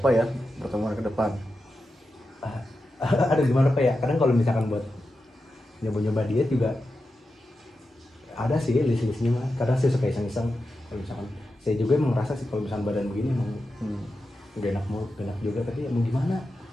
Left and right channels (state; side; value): normal; both; correlation 0.90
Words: ya pertemuan ke depan. Ada gimana pak ya, kadang kalau misalkan buat nyoba diet juga ada sih list-listnya mah. Kadang saya suka iseng-iseng, kalau misalkan saya juga emang merasa sih kalau misalkan badan begini emang udah enak juga, tapi ya mau gimana.